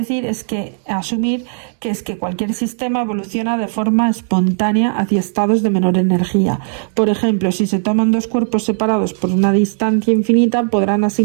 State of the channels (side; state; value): left; silent; digital silence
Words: es que asumir que es que cualquier sistema evoluciona de forma espontánea hacia estados de menor energía. Por ejemplo, si se toman dos cuerpos separados por una distancia infinita, podrán